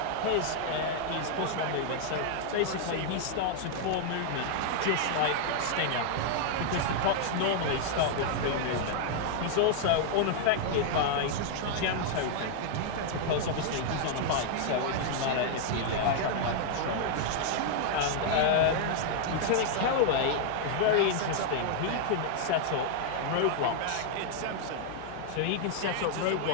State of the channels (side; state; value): both; different; correlation 0.00